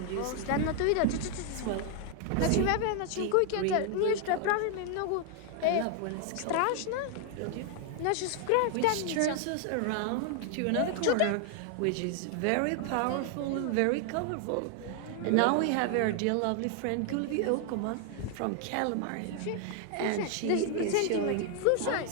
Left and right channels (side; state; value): both; different; correlation 0.00